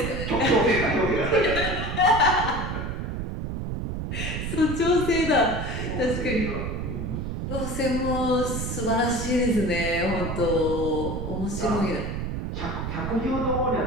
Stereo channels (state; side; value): noise; right; rumble, 4 dB below the sound